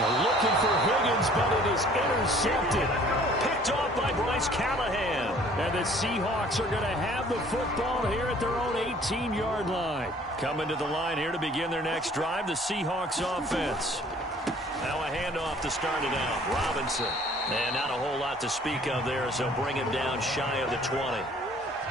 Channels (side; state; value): both; normal; correlation 0.54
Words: looking for Higgins, but it is intercepted. Picked off by Bryce Callahan. And the Seahawks are going to have the football here at their own 18-yard line. Coming to the line here to begin their next drive, the Seahawks offense. Now a handoff to start it out. Robinson. And not a whole lot to speak of there, as they'll bring him down shy of the 20.